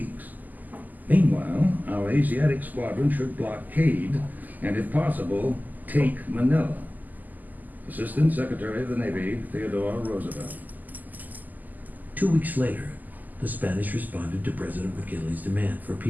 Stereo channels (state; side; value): late; left; 0.083 ms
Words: Meanwhile, our Asiatic squadron should blockade and, if possible, take Manila. Assistant Secretary of the Navy, Theodore Roosevelt. 2 weeks later, the Spanish responded to President McKinley's demand for